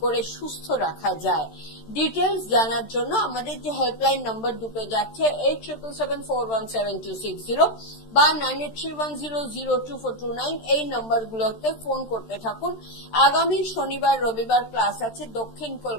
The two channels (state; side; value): late; right; 13 ms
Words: করে সুস্থ রাখা যায়। ডিটেলস জানার জন্য আমাদের যে হেল্পলাইন নাম্বার দুটো যাচ্ছে 8777417260 বা 9831002429, এই নাম্বারগুলোতে ফোন করতে থাকুন। আগামী শনিবার রবিবার ক্লাস আছে দক্ষিণ